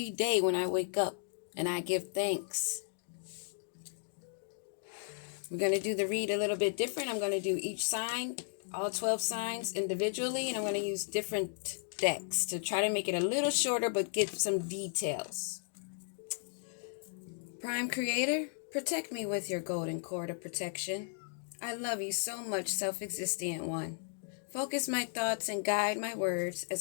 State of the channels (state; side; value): silent; right; digital silence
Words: day when I wake up and I give thanks. We're going to do the read a little bit different. I'm going to do each sign, all 12 signs individually, and I'm going to use different decks to try to make it a little shorter but get some details. Prime Creator, protect me with your golden cord of protection. I love you so much, self-existent one. Focus my thoughts and guide my words